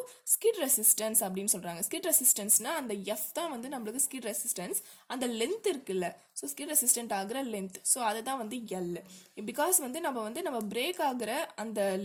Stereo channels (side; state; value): both; identical; correlation 1.00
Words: skid resistance அப்படின்னு சொல்கிறாங்க. ஸ்கிட் ரெசிஸ்டன்ஸ்னா அந்த எஃப் தான் வந்து நம்மளுக்கு ஸ்கிட் ரெசிஸ்டன்ஸ், அந்த லென்த் இருக்குல்ல, ஸோ ஸ்கிட் ரெசிஸ்டன்ட் ஆகிற லென்த், ஸோ அதுதான் வந்து எல். பிகாஸ் வந்து நம்ம பிரேக் ஆகிற அந்த